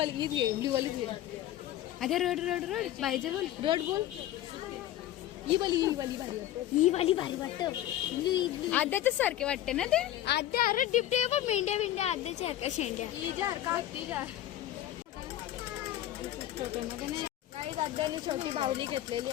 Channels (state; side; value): quieter; right; 13.1 dB